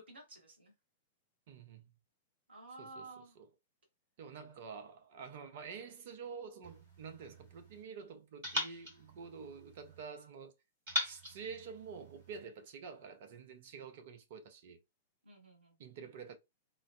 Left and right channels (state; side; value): inverted; both; correlation -0.32